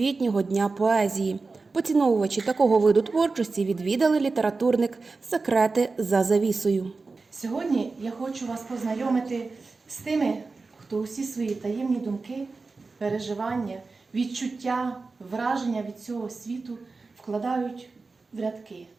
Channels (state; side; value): quieter; left; 4.0 dB